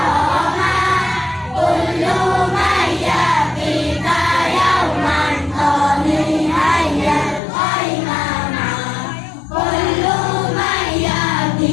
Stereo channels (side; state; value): right; drops out; at 7.4 s